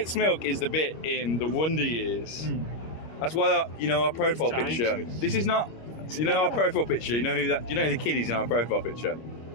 Milk is the bit in the Wonder Years. That's why our profile picture. This is not. Our profile picture. You know who that? Do you know who the kid is in our profile picture?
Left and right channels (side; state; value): right; late; 25 ms